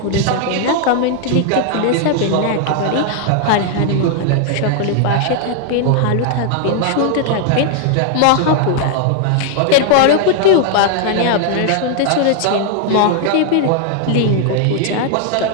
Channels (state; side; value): different; both; correlation 0.00